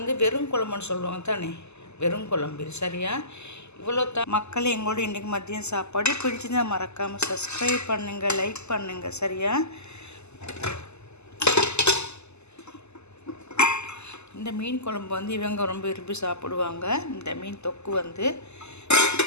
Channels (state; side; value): late; right; 0.81 ms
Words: வெறும் குழம்புன்னு சொல்லுவாங்க தானே, வெறும் குழம்பு. சரியா? இவ்வளோ தான் மக்கள் எங்களோட இன்றைக்கு மதியம் சாப்பாடு. பிடிச்சிருந்தால் மறக்காமல் சப்ஸ்கிரைப் பண்ணுங்கள், லைக் பண்ணுங்கள். சரியா? இந்த மீன் குழம்பு இவங்க ரொம்ப விரும்பி சாப்பிடுவாங்க. இந்த மீன் தொக்கு